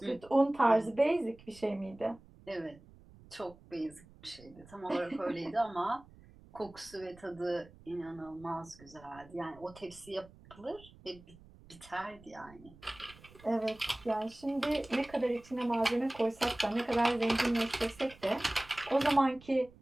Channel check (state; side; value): noise; right; rumble, 23 dB below the sound